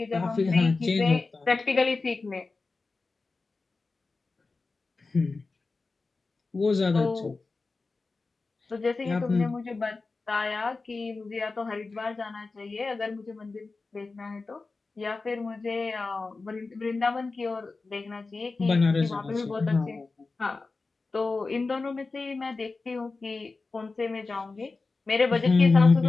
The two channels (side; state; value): right; quieter; 3.8 dB